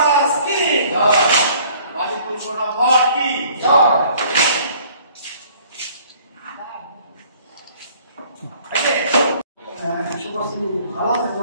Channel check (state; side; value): inverted; both; correlation -0.55